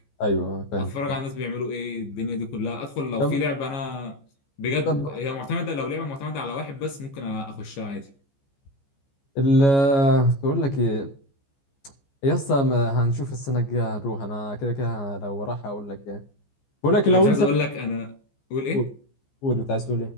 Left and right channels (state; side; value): late; right; 14 ms